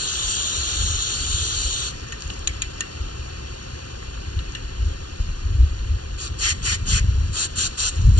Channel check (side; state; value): right; late; 0.69 ms